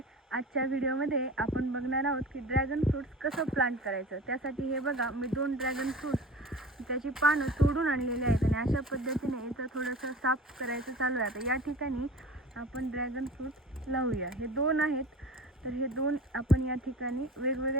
आजच्या व्हिडिओमध्ये आपण बघणार आहोत की ड्रॅगन फ्रूट्स कसं प्लांट करायचं। त्यासाठी हे बघा, मी 2 ड्रॅगन फ्रूट्स त्याची पानं तोडून आणलेली आहेत आणि अशा पद्धतीने याचं थोडंसं साफ करायचं चालू आहे। आता या ठिकाणी आपण ड्रॅगन फ्रूट लावूया। हे 2 आहेत, तर हे 2 आपण या ठिकाणी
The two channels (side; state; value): both; normal; correlation 0.37